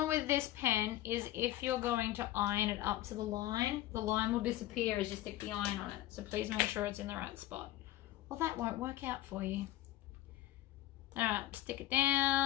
with this pen is if you're going to iron it up to the line will disappear as you stick the iron on it. So please make sure it's in the right spot. Well, that won't work out for you. All right, stick it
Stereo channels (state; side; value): quieter; right; 14.7 dB